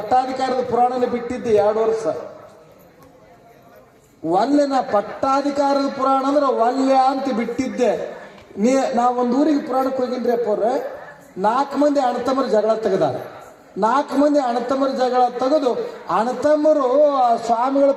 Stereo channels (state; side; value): identical; both; correlation 1.00